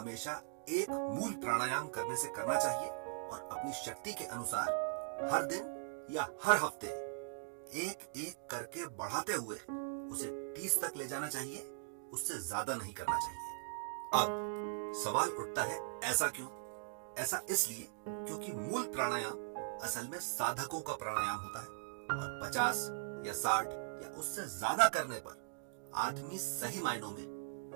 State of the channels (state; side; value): silent; left; digital silence